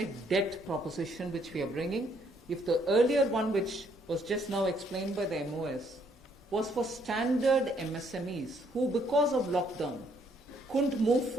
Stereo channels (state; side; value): normal; both; correlation 0.68